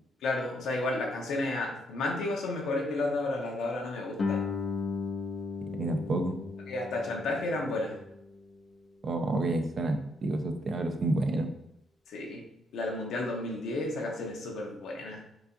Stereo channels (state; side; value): normal; both; correlation 0.72